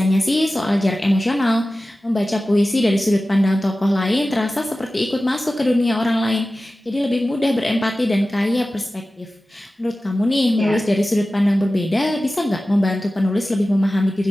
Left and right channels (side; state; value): both; normal; correlation 0.96